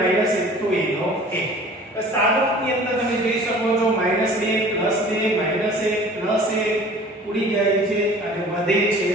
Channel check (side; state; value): both; normal; correlation 0.46